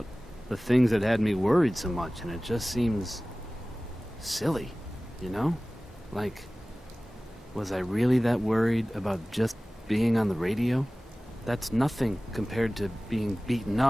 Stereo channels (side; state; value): both; normal; correlation 0.98